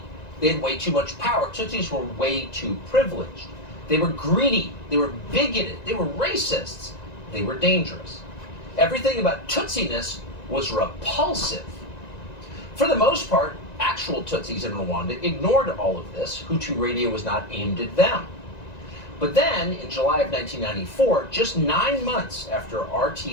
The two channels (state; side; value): late; right; 1.9 ms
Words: They had way too much power. Tutsis were way too privileged. They were greedy. They were bigoted. They were racists. They were dangerous. Everything about Tutsiness was repulsive. For the most part, actual Tutsis in Rwanda ignored all of this. Hutu Radio was not aimed at them. But then, in July of 1994, just 9 months after